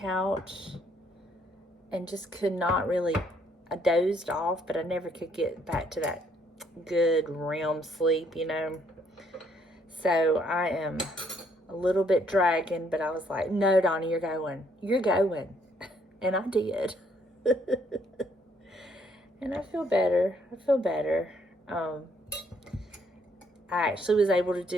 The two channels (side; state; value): both; normal; correlation 0.68